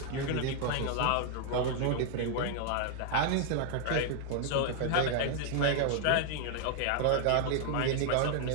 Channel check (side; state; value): both; different; correlation 0.00